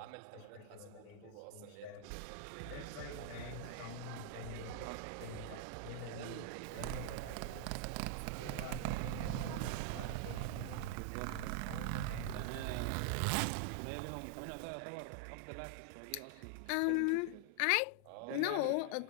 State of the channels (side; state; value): both; different; correlation 0.00